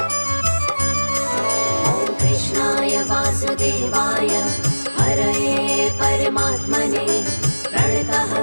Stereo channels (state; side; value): inverted; both; correlation -1.00